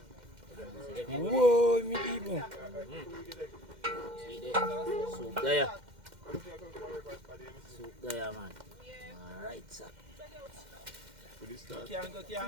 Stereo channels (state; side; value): late; left; 2.1 ms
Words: Whoa, me people. See there? Soup there. Soup there, man. Alright, sir.